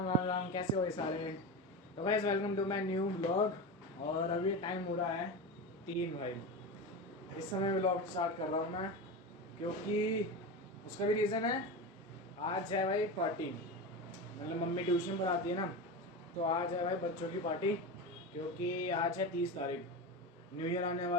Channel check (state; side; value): normal; both; correlation 0.22